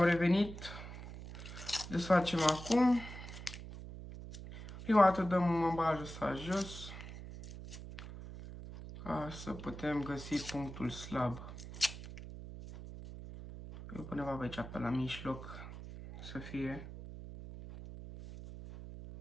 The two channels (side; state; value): right; noise; hum, 11 dB below the sound